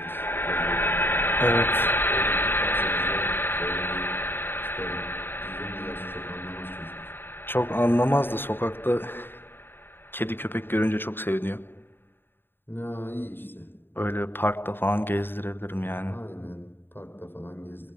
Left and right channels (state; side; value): late; right; 0.10 ms